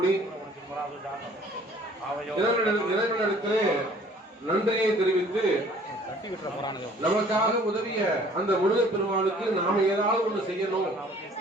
இறைவனிடத்திலே நன்றியை தெரிவித்து நமக்காக உதவிய அந்த முருகப் பெருமானுக்கு நாம ஏதாவது ஒண்ணு செய்யணும்,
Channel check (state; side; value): normal; both; correlation 0.54